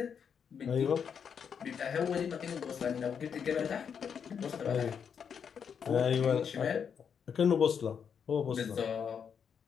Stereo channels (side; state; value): right; quieter; 7.1 dB